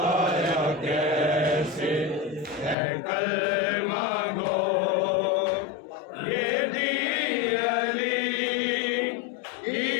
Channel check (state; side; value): drops out; right; at 2.8 s